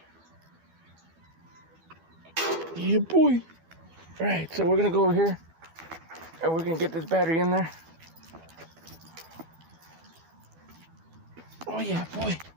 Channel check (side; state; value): left; late; 12 ms